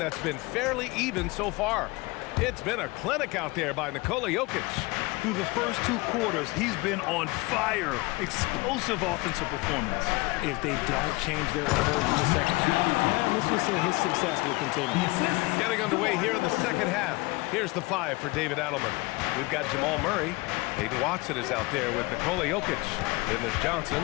been fairly even so far. It's been a clinic out there by Nikola Jokic. Through the first 2 quarters, he's been on fire. Explosive offensive performance. If they don't change their approach in the second half, let's just say his success will continue. Getting underway here in the second half. Here's the 5 for David Adelman. We've got Jamal Murray. Hayden Watson is out there with Nikola Jokic. Then there's Johnson,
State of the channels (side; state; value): right; quieter; 23.8 dB